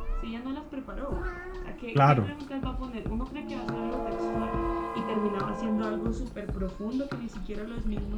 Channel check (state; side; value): identical; both; correlation 1.00